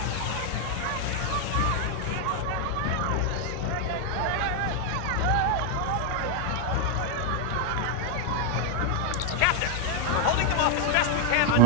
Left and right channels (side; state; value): both; different; correlation 0.01